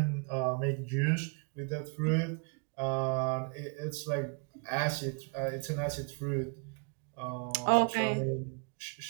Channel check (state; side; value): quieter; left; 36.8 dB